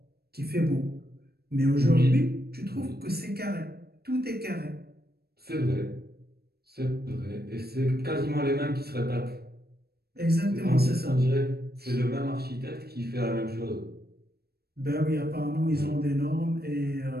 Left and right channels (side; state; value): left; late; 0.46 ms